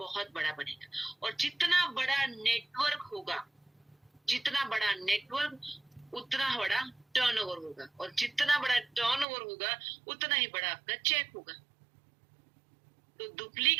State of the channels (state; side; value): drops out; left; at 9.2 s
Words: बड़ा बनेगा। और जितना बड़ा नेटवर्क होगा, जितना बड़ा नेटवर्क उतना बड़ा टर्नओवर होगा, और जितना बड़ा टर्नओवर होगा उतना ही बड़ा आपका चेक होगा। तो